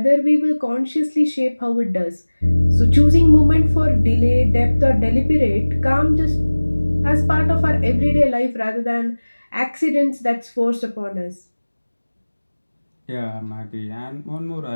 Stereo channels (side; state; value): both; inverted; correlation -1.00